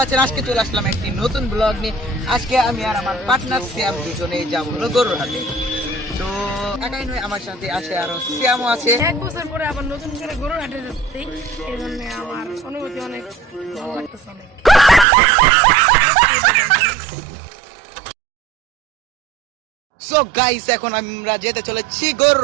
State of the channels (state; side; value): drops out; left; at 15.1 s